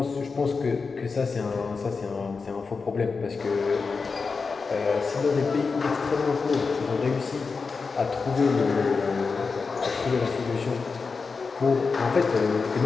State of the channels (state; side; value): quieter; right; 4.7 dB